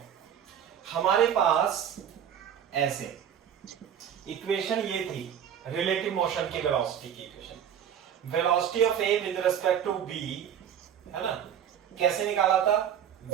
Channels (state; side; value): quieter; left; 9.0 dB